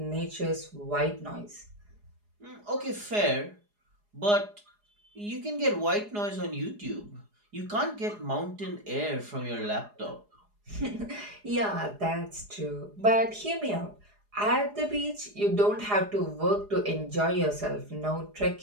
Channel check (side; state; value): left; late; 4.8 ms